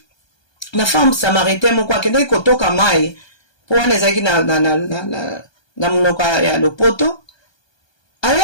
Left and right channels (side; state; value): right; late; 1.2 ms